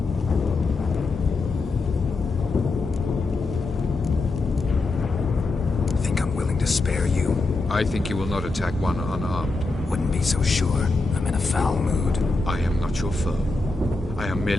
Think I'm willing to spare you? I think you will not attack one unarmed. Wouldn't be so sure. I'm in a foul mood. I am not your foe. I am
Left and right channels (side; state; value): right; quieter; 3.4 dB